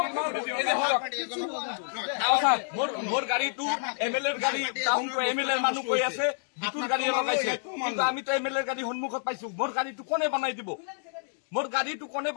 মোৰ গাড়ীটো এমএলএৰ গাড়ী টাউনটো এমএলএৰ মানুহ কৈ আছে বিটুৰ গাড়ী লগাইছে কিন্তু আমিতো এমএলএৰ গাড়ী সন্মুখত পাইছো মোৰ গাড়ীটো কোনে বনাই দিব মোৰ গাড়ীটো কোনে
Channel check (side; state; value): right; silent; digital silence